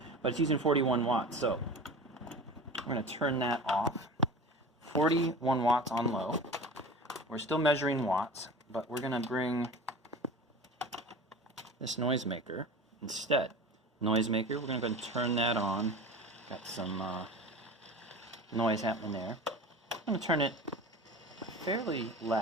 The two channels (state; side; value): normal; both; correlation 0.34